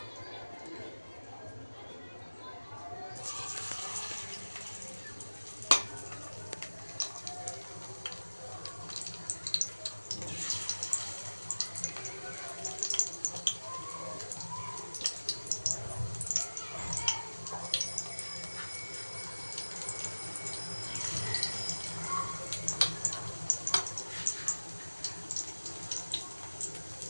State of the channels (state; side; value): inverted; both; correlation -1.00